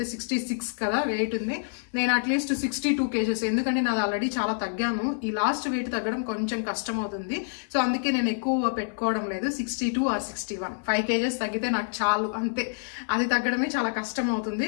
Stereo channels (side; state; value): right; silent; 60 dB below the other